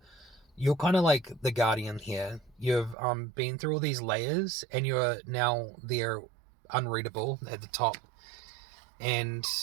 kind of like the guardian here. You've been through all these layers, and you're now there, unreadable at the top, and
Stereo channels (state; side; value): drops out; left; at 3.0 s